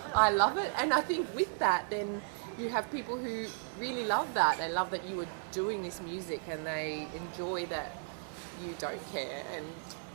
I love it. And I think with that, then you have people who really love that. They love that you are doing this music, and they enjoy that you don't care,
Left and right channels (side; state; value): left; silent; digital silence